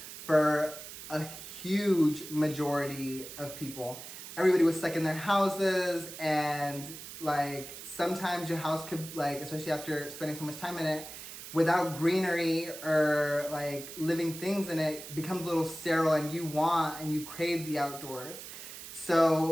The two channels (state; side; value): noise; right; hiss, 12 dB below the sound